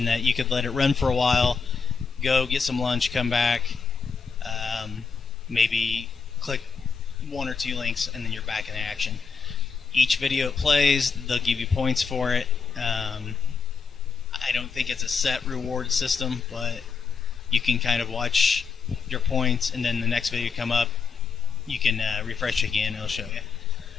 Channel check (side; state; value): right; quieter; 5.6 dB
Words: that you could let it run for a while, go get some lunch, come back, maybe click one or two links, and then you're back in action. Each video it plays, they'll give you points for it. I don't think it's a set reward system, but you can kind of watch your points, and then the next video come up, you can refresh again, it'll show you.